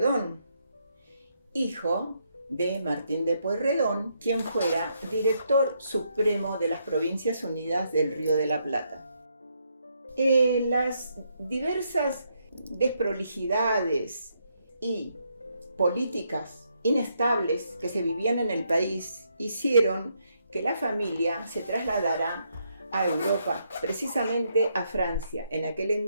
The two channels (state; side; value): inverted; both; correlation -0.76